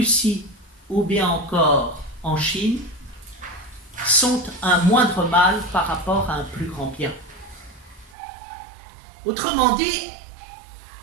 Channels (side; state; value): left; drops out; at 8.2 s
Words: ou bien encore en Chine sont un moindre mal par rapport à un plus grand bien. Autrement dit,